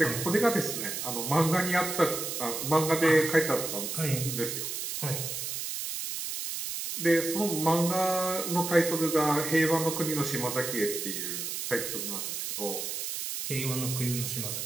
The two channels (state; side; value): noise; right; hiss, 4 dB below the sound